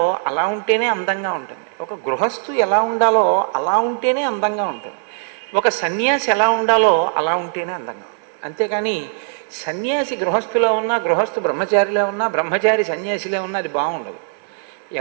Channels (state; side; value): silent; left; 66 dB below the other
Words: అలా ఉంటేనే అందంగా ఉంటుంది. ఒక గృహస్థు ఎలా ఉండాలో అలా ఉంటేనే అందంగా ఉంటుంది. ఒక సన్యాసి ఎలా ఉండాలో అలా ఉంటేనే అందంగా ఉంటుంది. అంతేకాని సన్యాసి గృహస్థులో ఉన్నా, గృహస్థు బ్రహ్మచారిలో ఉన్నా, బ్రహ్మచారి సన్యాసిలో ఉన్నా అది బాగుండదు.